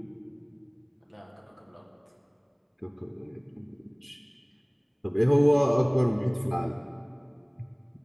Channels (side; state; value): both; identical; correlation 1.00